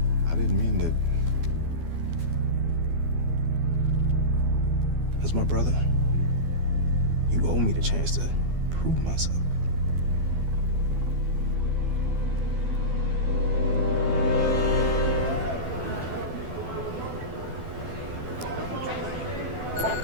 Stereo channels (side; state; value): left; late; 12 ms